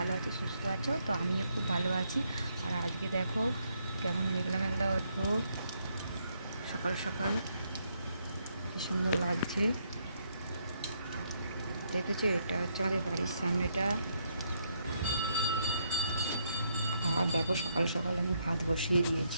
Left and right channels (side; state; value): both; inverted; correlation -0.75